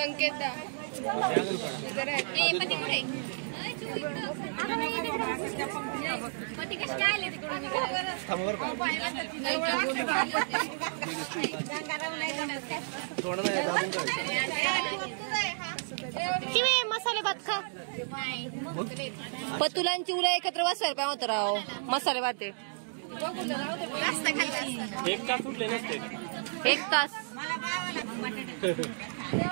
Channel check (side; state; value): left; silent; digital silence